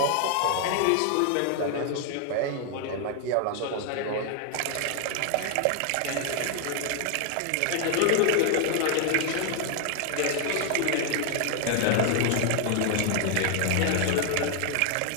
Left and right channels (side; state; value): both; different; correlation 0.00